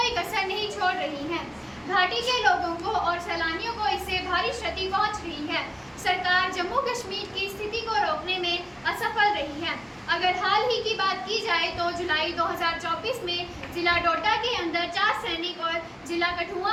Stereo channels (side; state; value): both; identical; correlation 1.00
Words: कसर नहीं छोड़ रही हैं। घाटी के लोगों को और सैलानियों को इससे भारी क्षति पहुँच रही है। सरकार जम्मू कश्मीर की स्थिति को रोकने में असफल रही है। अगर हाल ही की बात की जाए तो जुलाई 2024 में जिला डोडा के अंदर 4 सैनिक और जिला कठुआ